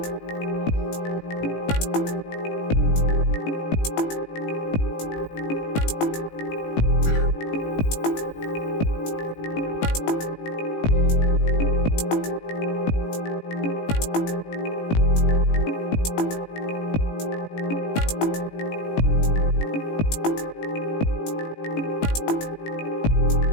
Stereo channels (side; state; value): right; late; 18 ms